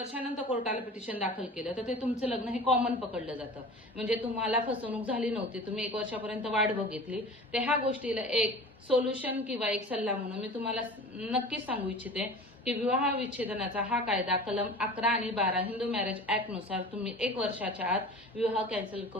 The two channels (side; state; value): both; normal; correlation 0.38